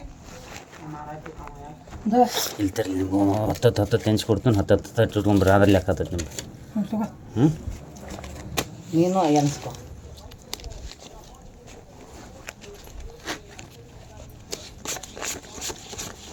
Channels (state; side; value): identical; both; correlation 1.00